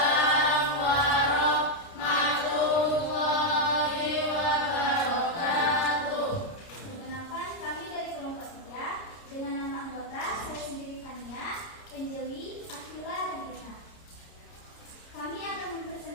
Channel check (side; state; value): right; late; 30 ms